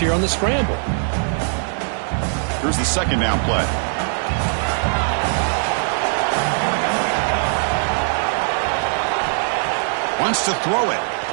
on the scramble. Here's the 2nd down play. Wants to throw it.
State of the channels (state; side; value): silent; left; digital silence